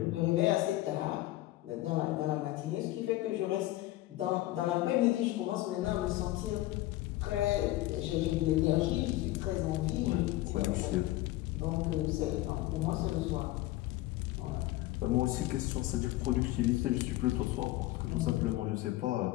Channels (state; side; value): quieter; right; 16.9 dB